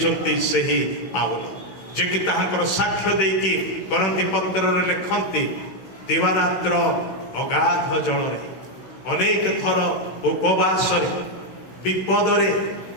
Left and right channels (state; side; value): late; right; 16 ms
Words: ସେହି ପାଉଲ, ଯିଏକି ତାହାଙ୍କର ସାକ୍ଷ୍ୟ ଦେଇକି କରନ୍ତି ପତ୍ରରେ ଲେଖନ୍ତି, ଦିବାରାତ୍ର ଅଗାଧ ଜଳରେ, ଅନେକ ଥର ଉପବାସରେ, ବିପଦରେ,